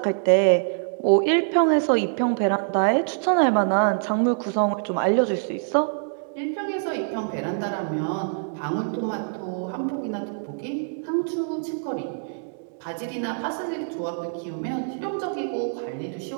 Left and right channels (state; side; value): silent; left; digital silence